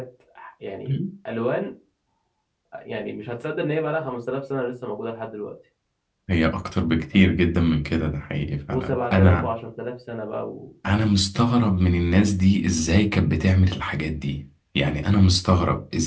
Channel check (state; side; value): identical; both; correlation 1.00